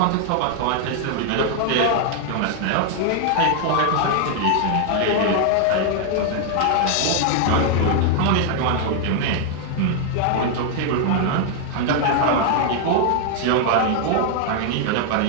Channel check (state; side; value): different; both; correlation 0.00